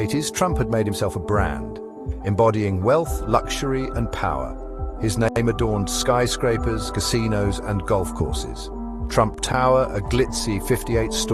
Trump had made himself a brand, embodying wealth, luxury, and power. His name adorned skyscrapers, casinos, and golf courses. Trump Tower, a glitzy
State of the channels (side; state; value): both; identical; correlation 1.00